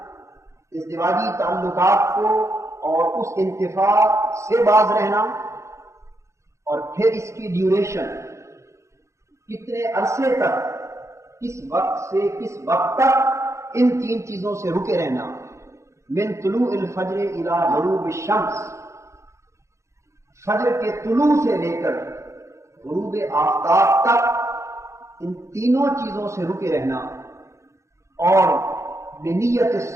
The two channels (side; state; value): left; late; 0.14 ms